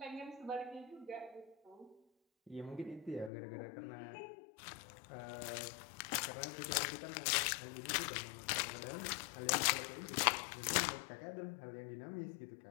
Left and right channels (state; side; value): drops out; right; at 3.3 s